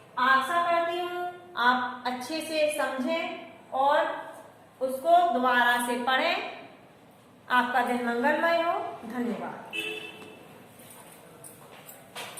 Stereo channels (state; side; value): identical; both; correlation 1.00